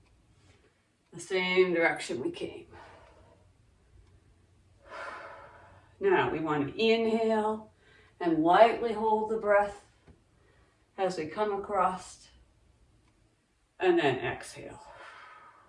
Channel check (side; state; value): both; identical; correlation 1.00